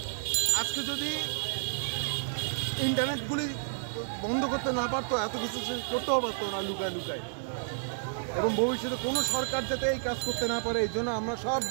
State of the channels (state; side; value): silent; left; digital silence